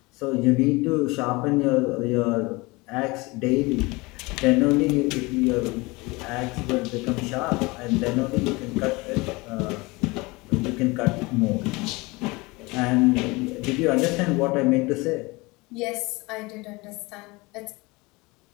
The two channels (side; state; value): right; quieter; 24.2 dB